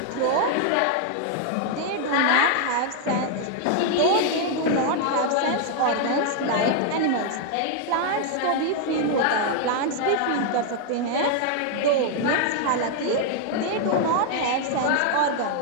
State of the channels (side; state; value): both; different; correlation 0.00